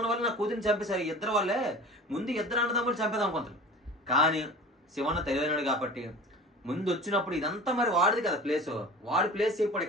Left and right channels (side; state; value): both; normal; correlation 0.38